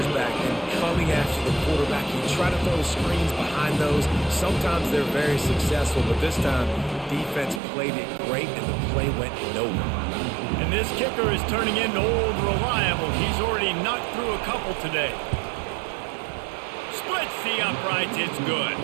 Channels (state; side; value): drops out; left; at 7.6 s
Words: back and coming after the quarterback. You try to throw screens behind those. Sometimes they're very successful, but this time, defense played it great, and the play went nowhere. And this kicker is turning into old reliable. He's already knocked through a couple today. Splits the uprights. It's good.